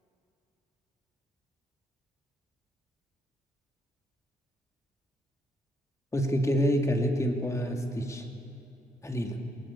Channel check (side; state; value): both; normal; correlation 0.74